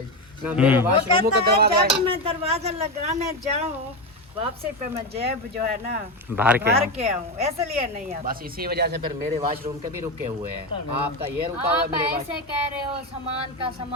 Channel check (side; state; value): both; normal; correlation 0.14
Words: ना, मेरे वो वॉशरूम का कहता है दरवाजा जब मैं दरवाजा लगाने जाऊँ वापसी पे मैं जेब जो है ना बाहर भर के आऊँ, इसलिए नहीं आता। बस इसी वजह से फिर मेरे वॉशरूम के भी रुके हुए हैं। आपका ये रुका हुआ है, आप मेरे ऐसे कह रहे हो